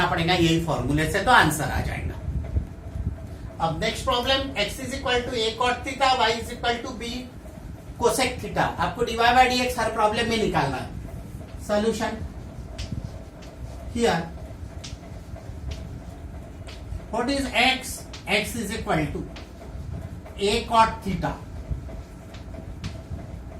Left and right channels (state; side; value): identical; both; correlation 1.00